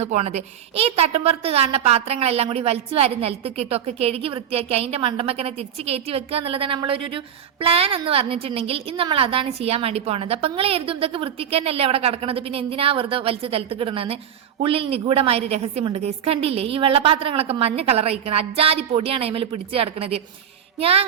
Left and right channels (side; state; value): left; quieter; 9.1 dB